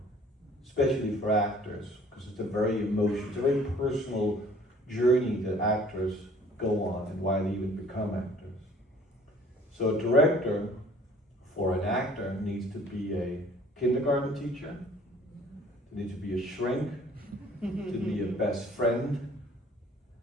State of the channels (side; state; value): both; normal; correlation 0.54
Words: especially for actors, because it's a very very personal journey that actors go on and why they even become actors. So a director for an actor needs to be a kindergarten teacher, they need to be a shrink, to be a best friend,